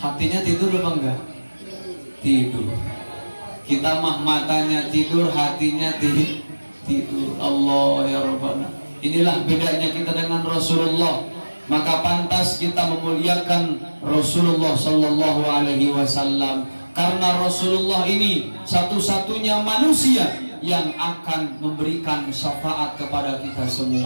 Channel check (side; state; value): both; inverted; correlation -1.00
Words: tidur apa enggak? Tidur. Kita mah matanya tidur, hatinya tidur. Allah ya Rabbana. Inilah bedanya kita dengan Rasulullah. Maka pantas kita memuliakan Rasulullah Sallallahu Alaihi Wasallam, karena Rasulullah ini satu-satunya manusia yang akan memberikan syafaat kepada kita